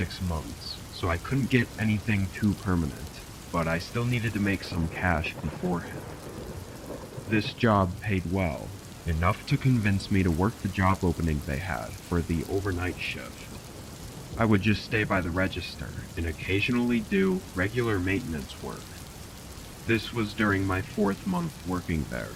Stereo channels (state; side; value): identical; both; correlation 1.00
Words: months, so I couldn't get anything too permanent, but I still needed to make some cash beforehand. This job paid well, enough to convince me to work the job opening they had for the overnight shift. I would just stay by the register and occasionally do regular maintenance work. This was during my 4th month working there.